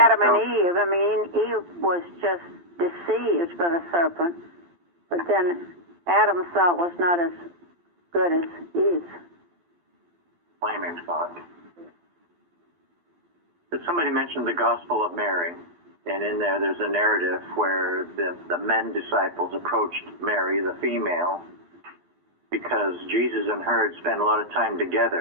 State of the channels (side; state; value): left; late; 12 ms